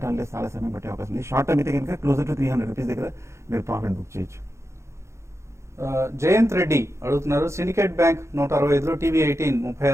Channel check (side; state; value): left; late; 0.14 ms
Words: చాలా సమయం పట్టే అవకాశం ఉంది. షార్ట్ టర్మ్ అయితే కనుక క్లోజర్ టు 300 రూపీస్ దగ్గర మీరు ప్రాఫిట్ బుక్ చేయొచ్చు. జయంత్ రెడ్డి అడుగుతున్నారు. సిండికేట్ బ్యాంక్ 165లో, TV18